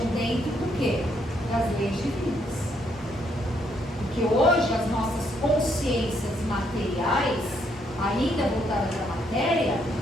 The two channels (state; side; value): normal; both; correlation 0.73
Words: dentro do quê? Das leis divinas. Porque hoje as nossas consciências materiais, ainda voltadas à matéria,